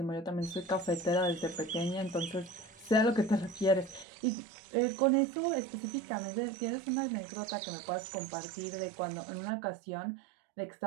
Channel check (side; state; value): left; drops out; at 4.0 s